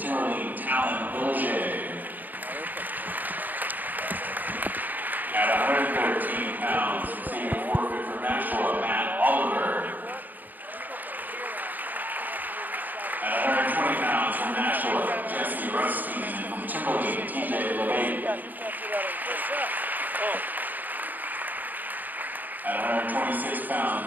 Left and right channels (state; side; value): late; left; 0.085 ms